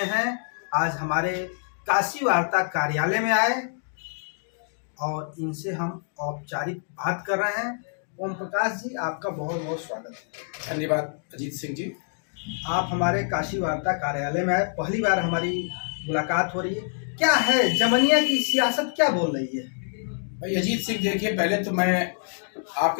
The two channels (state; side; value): silent; right; digital silence